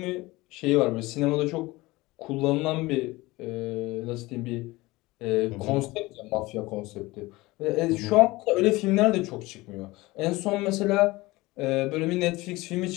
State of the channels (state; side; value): quieter; right; 20.8 dB